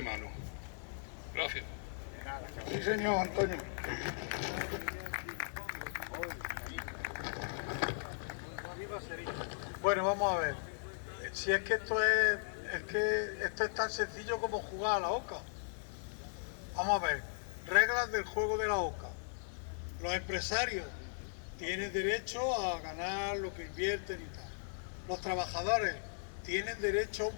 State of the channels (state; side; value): silent; right; digital silence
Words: mano. Gracias. Sí, señor Antonio. Bueno, vamos a ver. Si es que esto es tan sencillo como jugar a la oca. Vamos a ver. Reglas del juego de la oca. Los empresarios tienen derecho a ganar lo que invierten y tal. Los trabajadores tienen derecho